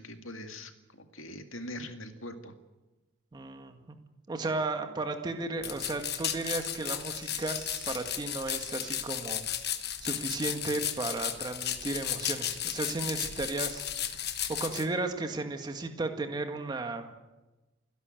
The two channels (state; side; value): normal; both; correlation 0.26